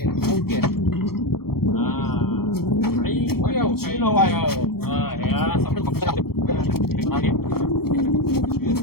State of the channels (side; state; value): right; late; 0.95 ms